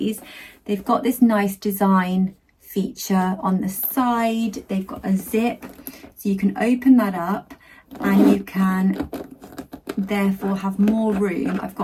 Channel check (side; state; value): both; identical; correlation 1.00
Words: They've got this nice design feature on the side. They've got a zip, so you can open that up and you can therefore have more room. I've